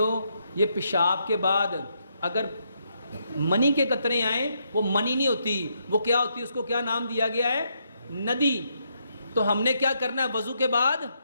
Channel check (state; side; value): inverted; both; correlation -0.77